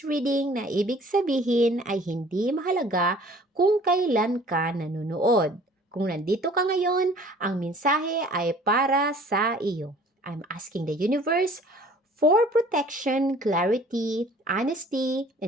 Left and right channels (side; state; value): both; normal; correlation 0.52